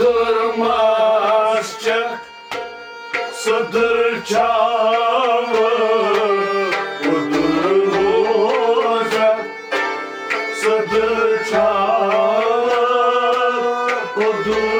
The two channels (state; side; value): identical; both; correlation 1.00